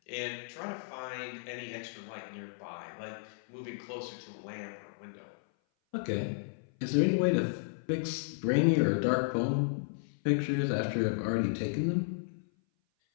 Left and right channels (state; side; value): silent; right; 55 dB below the other